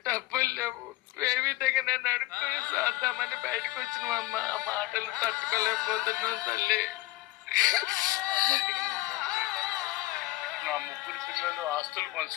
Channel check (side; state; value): right; quieter; 18.5 dB